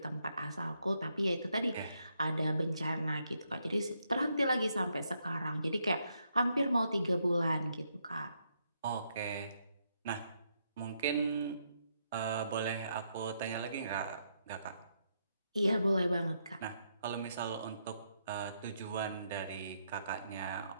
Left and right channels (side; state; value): both; inverted; correlation -0.77